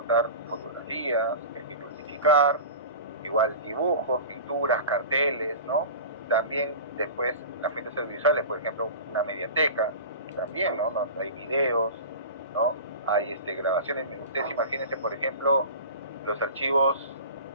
fotografías que hay que clasificar, igual dibujos, pinturas, carteles, ¿no? También después las fuentes audiovisuales, por ejemplo, una mediateca, también, ¿no? Hay videos, ¿no? Hay grabaciones. Ustedes imagínense, por ejemplo, los archivos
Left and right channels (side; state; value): both; inverted; correlation -0.34